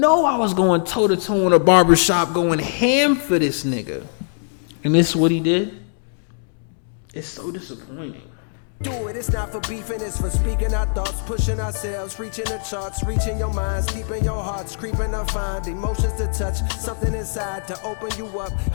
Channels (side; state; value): right; silent; digital silence